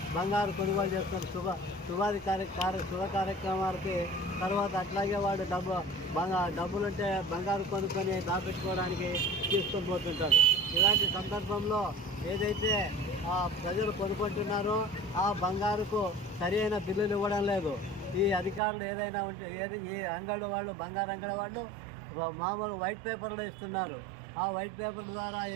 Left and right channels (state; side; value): drops out; left; at 18.6 s